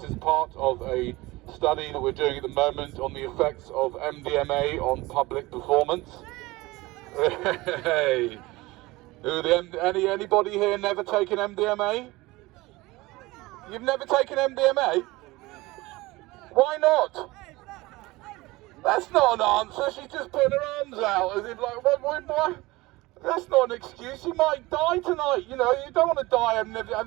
is part of a study that we're doing at the moment on the effects of MDMA on public performance. Hey, anybody here never taken MDMA? You've never taken MDMA? Why not? That's not an answer. She's just putting her arms out as if like, what? That's not an excuse. You might die tonight. You know, you don't want to die. I've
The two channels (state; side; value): quieter; left; 20.8 dB